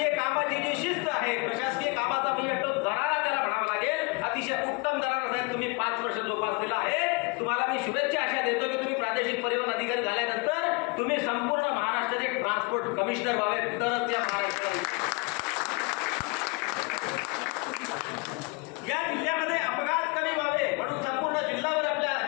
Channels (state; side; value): quieter; right; 29.1 dB